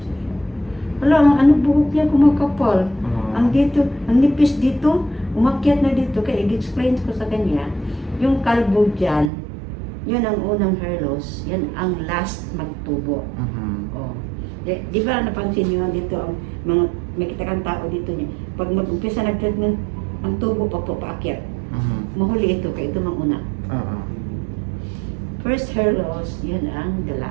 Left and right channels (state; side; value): drops out; left; at 9.3 s